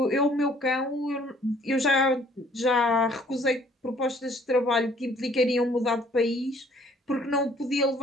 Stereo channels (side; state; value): both; normal; correlation 0.59